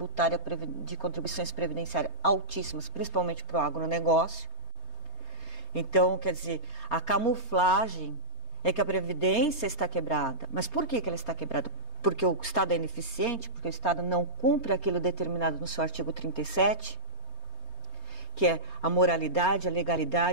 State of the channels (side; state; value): left; late; 3.2 ms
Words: de contribuições previdenciárias altíssimas, principalmente para o agronegócio. Então, quer dizer, a camuflagem é que a Previdência está quebrada. Mas por que ela está quebrada? Porque o Estado é ineficiente, porque o Estado não cumpre aquilo determinado no seu artigo 37, que é a moralidade, a